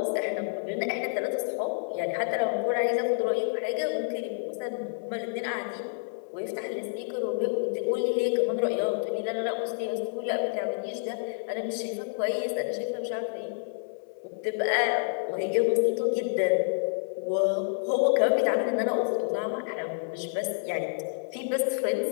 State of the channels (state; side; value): silent; right; 59 dB below the other